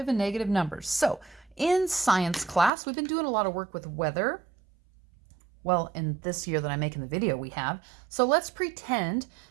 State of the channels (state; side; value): drops out; left; at 2.7 s